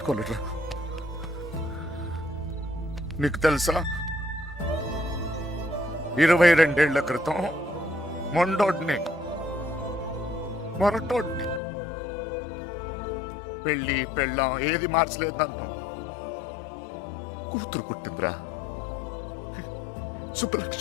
నీకు తెలుసా, 22 ఏళ్ల క్రితం మొండోడ్ని మొరటోడ్ని పెళ్ళి పెళ్ళాం ఏది మార్చలేదు నన్ను. కూతురు పుట్టిందిరా,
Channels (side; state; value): right; drops out; at 11.6 s